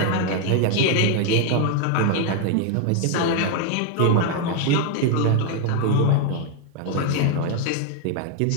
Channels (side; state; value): both; different; correlation 0.01